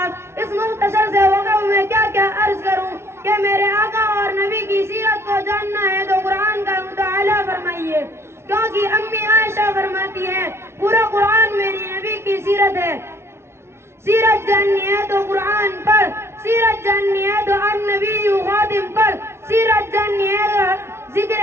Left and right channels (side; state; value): left; late; 0.12 ms